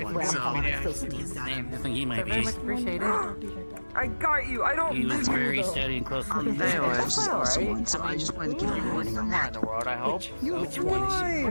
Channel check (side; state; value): both; inverted; correlation -1.00